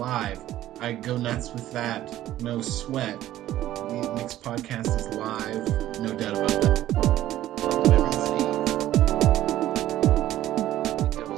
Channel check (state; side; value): quieter; left; 13.7 dB